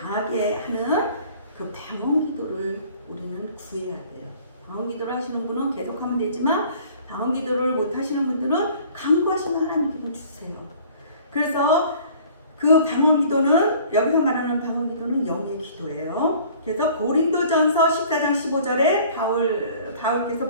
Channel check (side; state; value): both; inverted; correlation -0.51